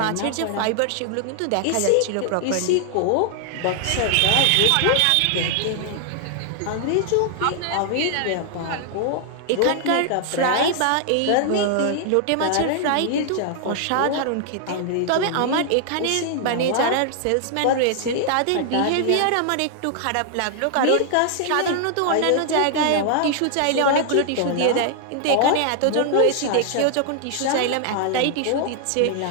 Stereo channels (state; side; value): different; both; correlation 0.00